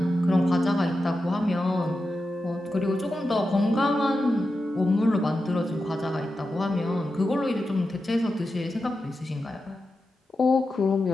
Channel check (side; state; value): both; normal; correlation 0.90